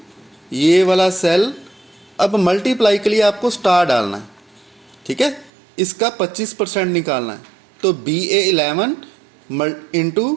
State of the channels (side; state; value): left; drops out; at 5.5 s